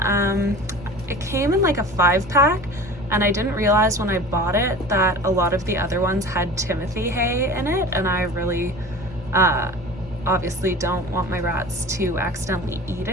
It came in like a 5-pack, and I didn't realize when I bought it that a lot of the other ones had Timothy hay in it, and I really obviously don't want my rats to accidentally eat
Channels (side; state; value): both; normal; correlation 0.38